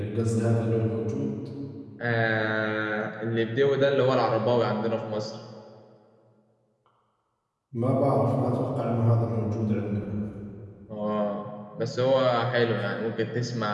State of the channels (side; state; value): both; identical; correlation 1.00